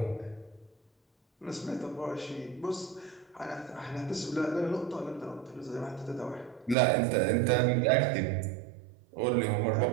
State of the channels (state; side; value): drops out; left; at 6.8 s